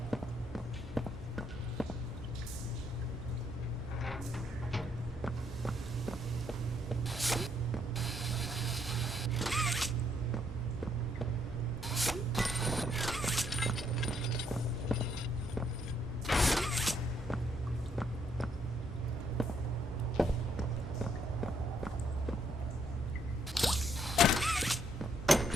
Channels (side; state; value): both; normal; correlation 0.72